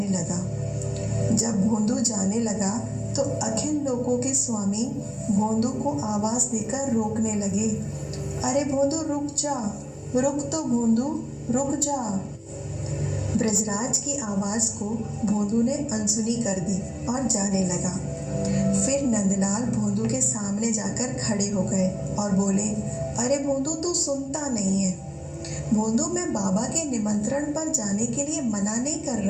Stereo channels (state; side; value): identical; both; correlation 1.00